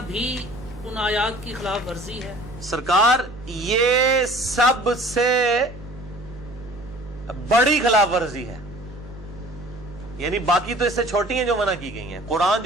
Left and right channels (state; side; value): noise; right; hum, 17 dB below the sound